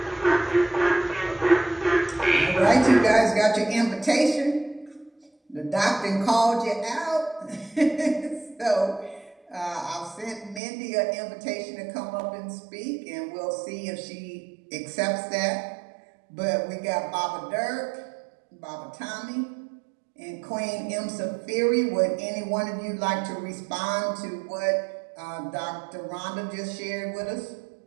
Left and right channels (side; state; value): left; drops out; at 10.6 s